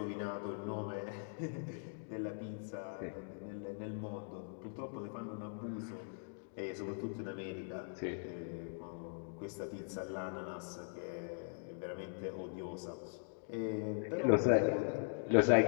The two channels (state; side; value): silent; right; digital silence